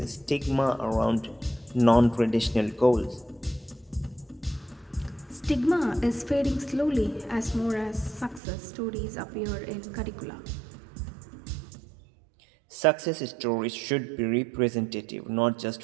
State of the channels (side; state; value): left; drops out; at 8.4 s